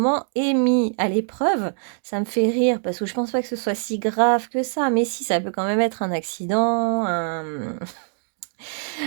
est mis à l'épreuve. Ça me fait rire parce que je pense pas que ce soit si grave que ça, mais si, ça peut quand même être un accident,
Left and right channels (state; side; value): silent; left; 58 dB below the other